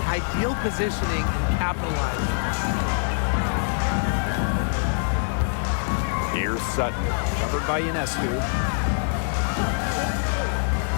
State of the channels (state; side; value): silent; right; digital silence